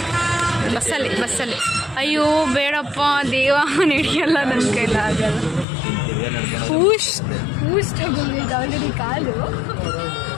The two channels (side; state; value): right; drops out; at 5.7 s